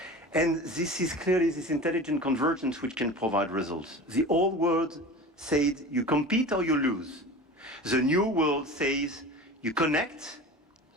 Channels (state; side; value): normal; both; correlation 0.35